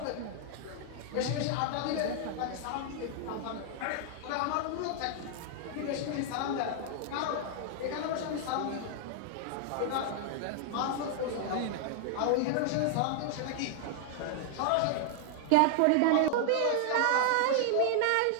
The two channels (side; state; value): both; different; correlation -0.01